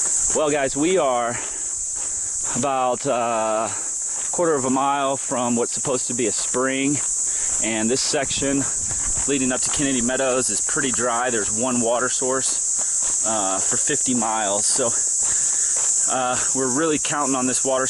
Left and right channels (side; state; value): both; identical; correlation 1.00